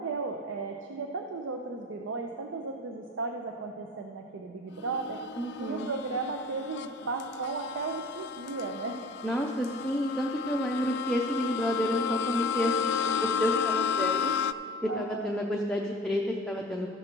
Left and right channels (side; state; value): both; normal; correlation 0.41